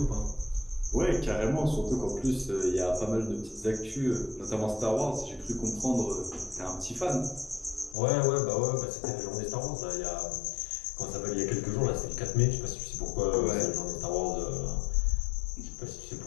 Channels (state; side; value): drops out; right; at 8.0 s